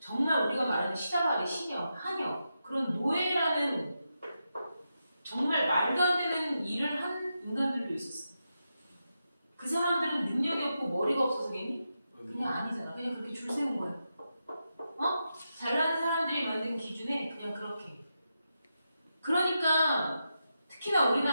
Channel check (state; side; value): inverted; both; correlation -0.87